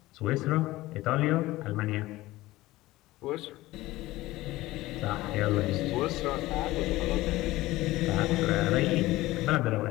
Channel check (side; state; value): right; quieter; 18.0 dB